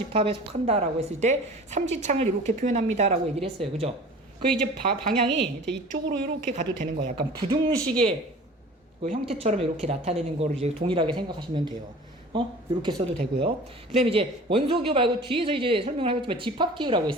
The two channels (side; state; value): both; normal; correlation 0.42